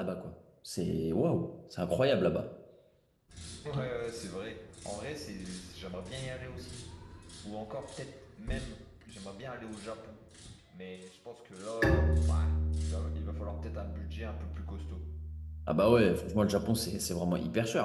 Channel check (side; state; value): both; identical; correlation 1.00